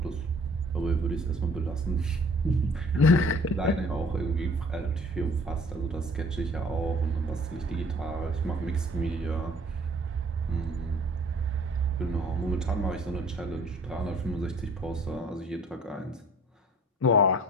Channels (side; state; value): both; normal; correlation 0.53